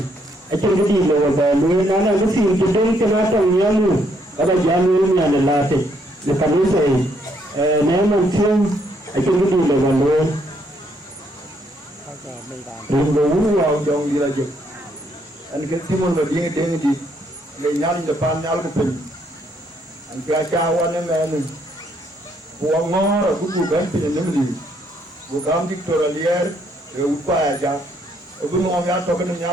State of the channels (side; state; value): both; normal; correlation 0.71